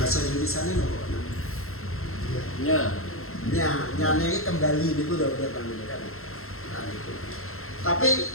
Indonesianya nya ini kembali itu domir namanya kan. Nah, itu. Tapi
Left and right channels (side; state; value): right; late; 0.62 ms